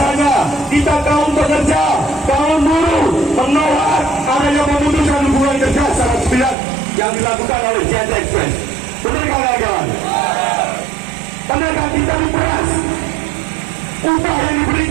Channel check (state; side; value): drops out; left; at 6.6 s